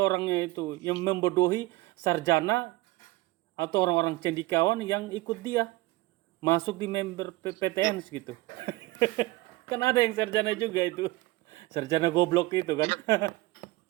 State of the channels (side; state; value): left; quieter; 20.3 dB